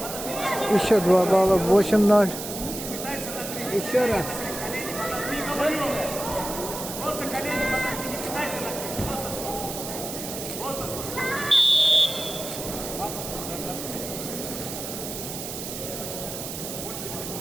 Еще 2 балла, 8-0. Еще раз.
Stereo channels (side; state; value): right; noise; hiss, 7 dB below the sound